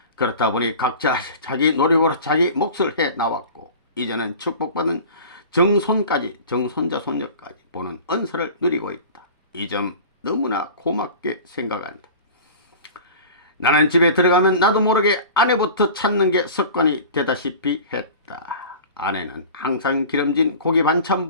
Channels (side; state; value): both; inverted; correlation -0.39